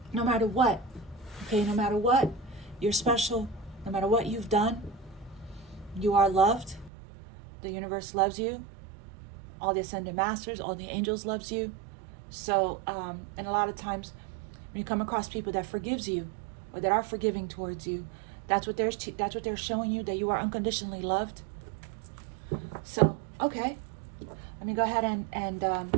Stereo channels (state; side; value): drops out; left; at 6.9 s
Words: no matter what, okay? No matter what, you're special. No matter what you've done, you are loved. The universe loves you. All the ascended masters, all the angels loves you. So, and a lot of times when you come across people that forgives you or that are forgiving towards you, that's what they're showing you, that you are unconditionally loved. So, okay, let me go ahead